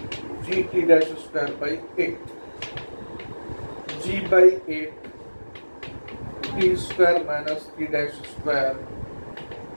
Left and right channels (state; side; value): inverted; both; correlation -1.00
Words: g t dash square by 8, g by 8 t square minus T dash square,